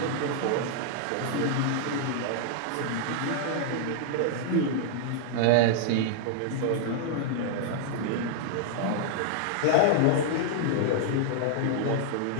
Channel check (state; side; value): different; both; correlation -0.01